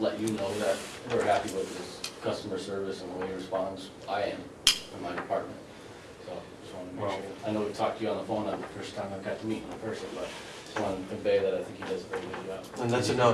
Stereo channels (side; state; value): both; identical; correlation 1.00